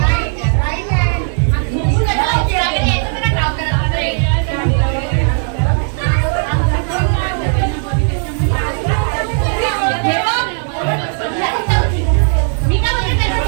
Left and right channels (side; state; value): left; silent; 58 dB below the other